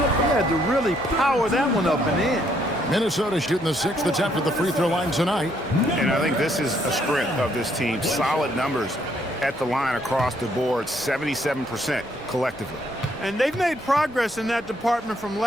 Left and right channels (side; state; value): both; normal; correlation 0.70